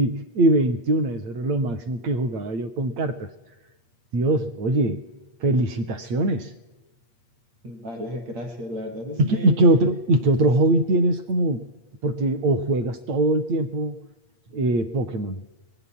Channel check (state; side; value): late; left; 8.5 ms